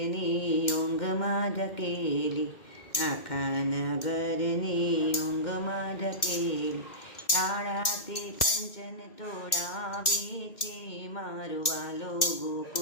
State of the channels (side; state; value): right; late; 1.9 ms